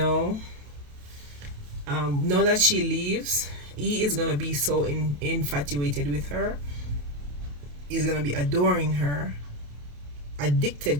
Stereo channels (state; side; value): late; left; 28 ms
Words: now that she leaves, he is gonna be so infatuated with her. He's gonna be adoring her,